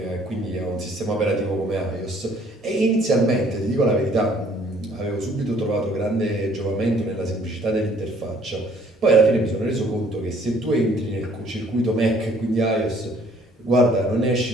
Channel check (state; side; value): normal; both; correlation 0.59